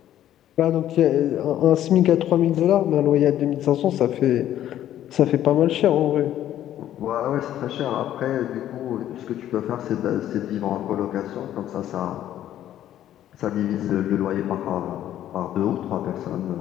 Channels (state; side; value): quieter; right; 11.9 dB